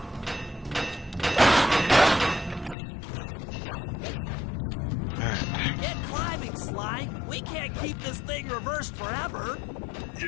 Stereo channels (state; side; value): drops out; right; at 2.8 s